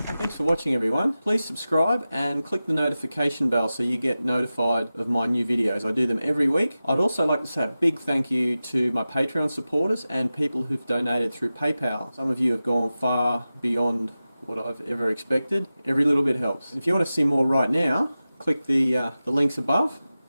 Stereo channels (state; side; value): inverted; both; correlation -0.95